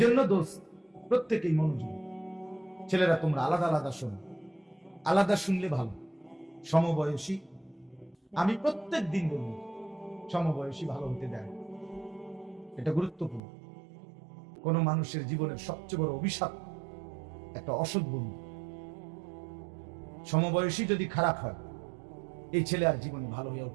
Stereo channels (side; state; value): left; drops out; at 13.4 s